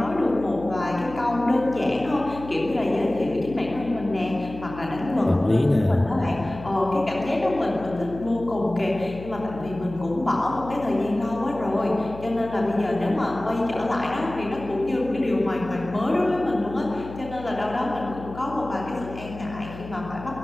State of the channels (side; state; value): left; noise; hum, 14 dB below the sound